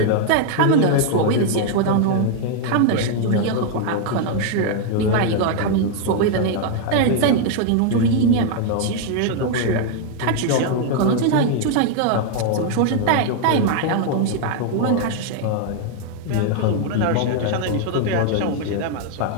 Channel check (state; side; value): different; both; correlation 0.00